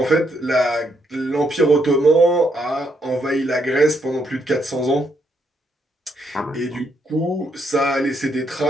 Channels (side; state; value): both; normal; correlation 0.76